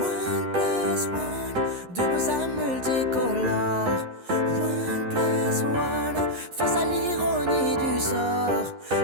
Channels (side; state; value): left; late; 11 ms